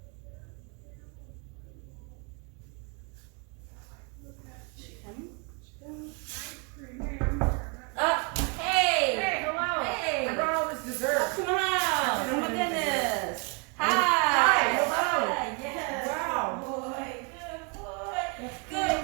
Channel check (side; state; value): left; quieter; 35.0 dB